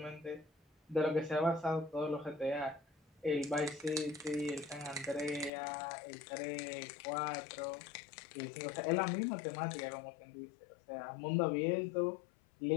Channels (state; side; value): drops out; right; at 5.5 s